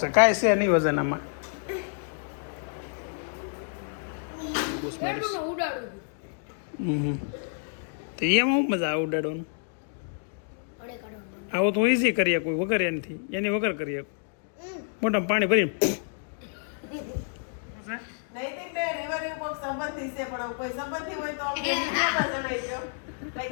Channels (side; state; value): right; silent; digital silence